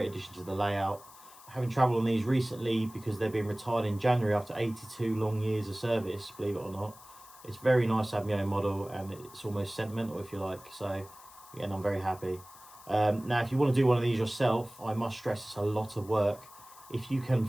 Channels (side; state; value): left; noise; hiss, 21 dB below the sound